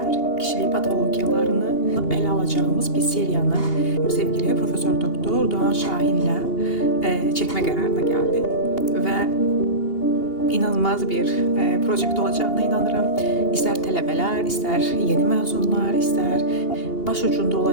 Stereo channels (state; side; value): late; right; 2.8 ms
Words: kişilik patologiyalarını ele alacağımız bir seriyanı sevgili Profesör Doktor Doğan Şahin'le çekme kararına geldi ve inanılmaz bir proje olacağına inanırım. İster tələbələr, ister yeni mezunlar, ister başucunda